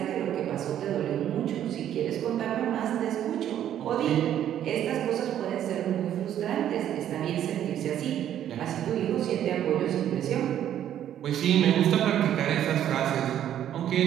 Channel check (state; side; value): quieter; left; 10.8 dB